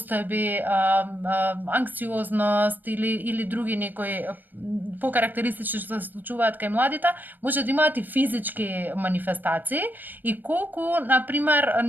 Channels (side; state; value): left; late; 0.090 ms